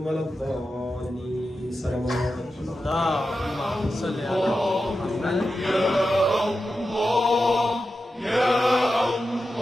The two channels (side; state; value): both; normal; correlation 0.91